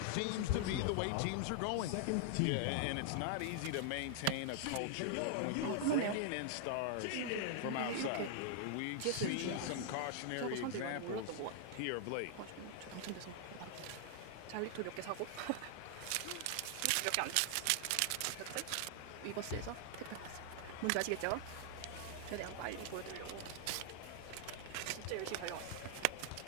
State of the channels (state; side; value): different; both; correlation 0.00